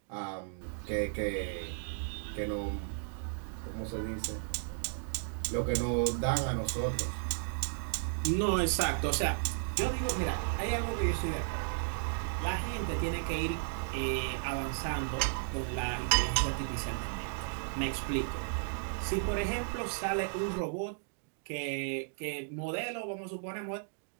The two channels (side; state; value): left; silent; digital silence